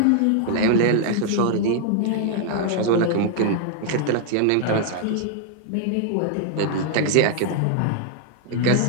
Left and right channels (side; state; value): both; different; correlation 0.00